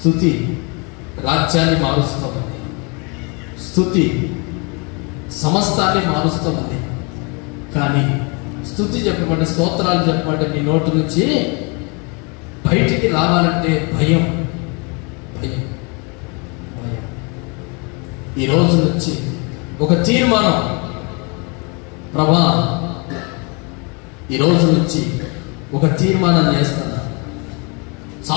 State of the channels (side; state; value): right; quieter; 32.0 dB